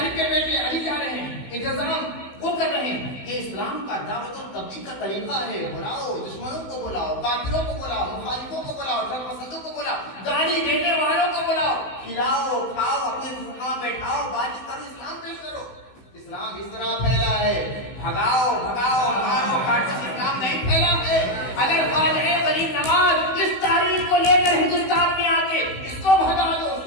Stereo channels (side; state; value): right; late; 16 ms